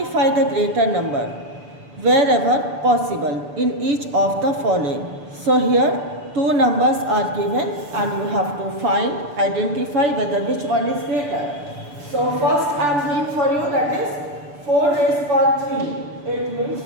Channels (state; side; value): late; left; 6.9 ms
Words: the greater number wherever possible in each of the following. So here two numbers are given and you have to find, identify whether which one is greater. So first I am doing for you, that is 4 raised power 3. It means